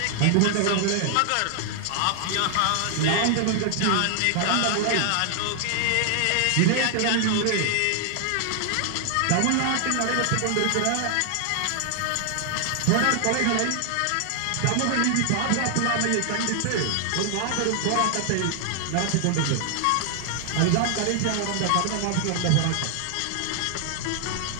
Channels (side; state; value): both; different; correlation 0.00